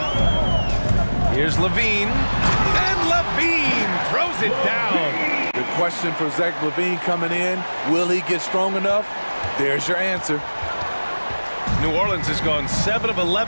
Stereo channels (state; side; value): inverted; both; correlation -1.00